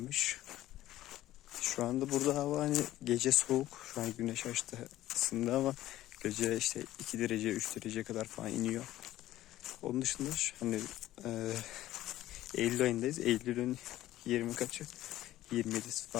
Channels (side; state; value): right; quieter; 14.6 dB